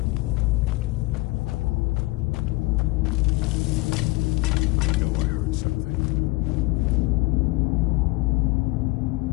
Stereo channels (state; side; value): quieter; right; 22.1 dB